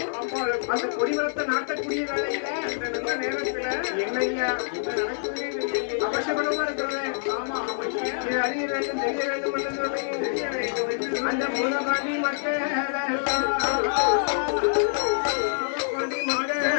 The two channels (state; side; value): silent; right; digital silence